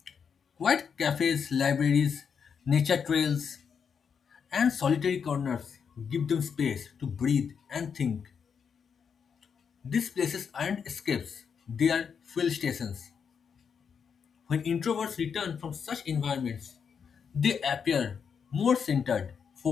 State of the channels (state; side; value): quieter; right; 6.7 dB